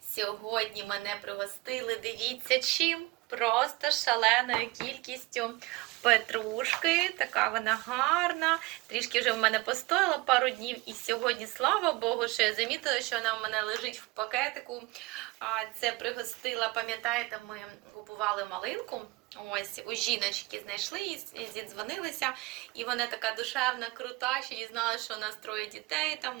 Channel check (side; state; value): left; quieter; 22.6 dB